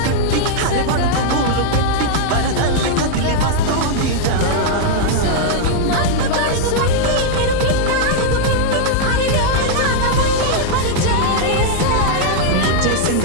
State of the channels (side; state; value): both; different; correlation -0.01